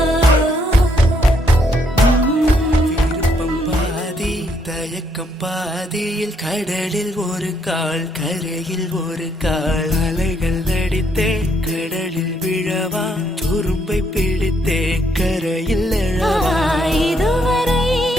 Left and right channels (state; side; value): normal; both; correlation 0.72